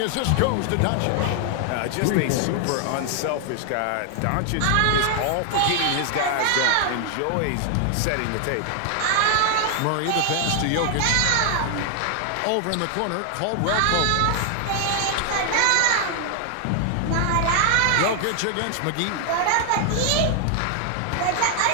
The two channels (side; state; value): both; different; correlation 0.00